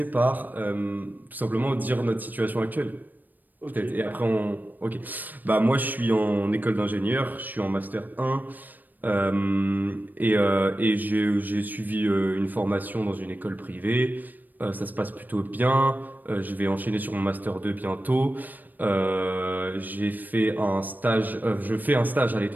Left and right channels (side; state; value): left; late; 0.087 ms